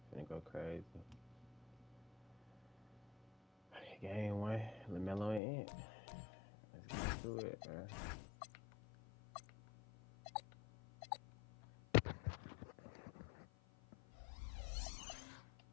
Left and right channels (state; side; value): drops out; right; at 5.4 s